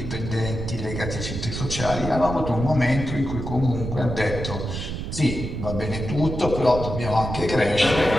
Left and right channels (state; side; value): noise; right; rumble, 6 dB below the sound